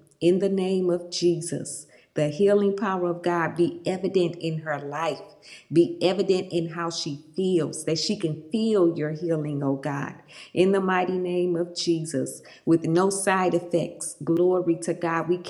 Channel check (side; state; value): both; identical; correlation 1.00